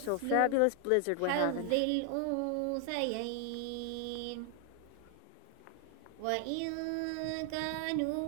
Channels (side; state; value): both; different; correlation 0.00